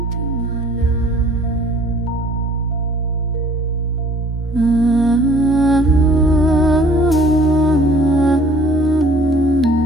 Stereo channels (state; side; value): normal; both; correlation 0.55